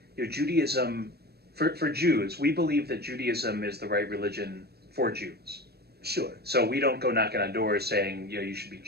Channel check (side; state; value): left; late; 0.46 ms